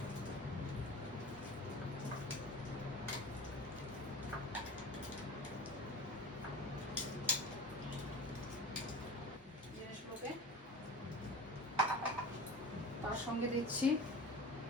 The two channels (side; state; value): both; normal; correlation 0.34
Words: জিনিসগুলোকে তার সঙ্গে